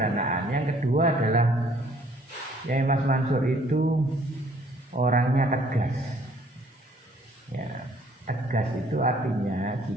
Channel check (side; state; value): both; normal; correlation 0.60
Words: Yang kedua adalah Kiai Mas Mansur itu orangnya tegas. Ya, tegas itu artinya